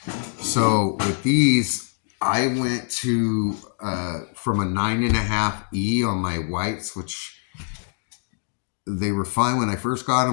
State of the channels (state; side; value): silent; right; 63 dB below the other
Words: So with these, I went to from a 9.5 E on my whites, which they were fine when I first got